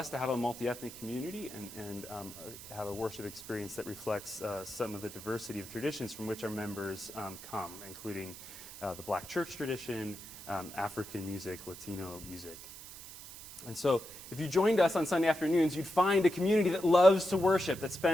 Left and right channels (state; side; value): noise; right; hiss, 14 dB below the sound